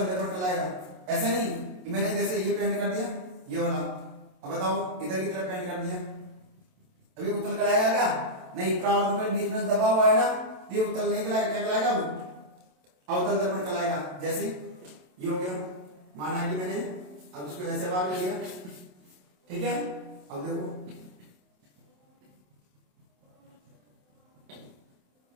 दर्पण कहलाएगा। ऐसा नहीं कि मैंने जैसे ये पेंट कर दिया ये वाला, अब बताओ इधर की तरफ पेंट कर दिया, अभी उत्तल कहलाएगा क्या? नहीं। परावर्तन पृष्ठ बीच में दबा हुआ है ना, ये उत्तल नहीं कहलाएगा। क्या कहलाएगा? अवतल दर्पण कहलाएगा। जैसे ये हो गया, माना कि मैंने अब इसको ऐसे भाग ले लिया। ठीक है। अब देखो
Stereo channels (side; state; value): left; late; 27 ms